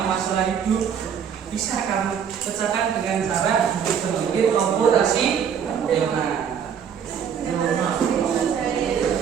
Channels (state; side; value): quieter; left; 7.7 dB